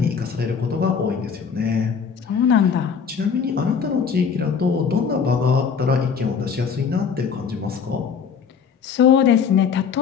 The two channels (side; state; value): right; quieter; 6.4 dB